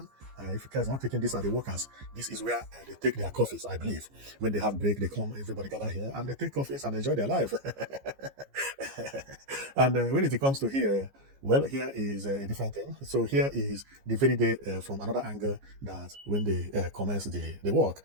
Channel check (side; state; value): left; late; 15 ms